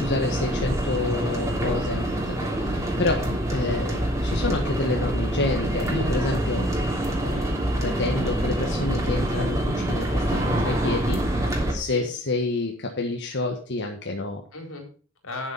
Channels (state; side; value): normal; both; correlation 0.54